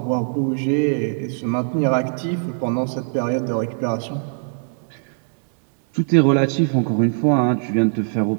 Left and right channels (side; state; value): left; silent; digital silence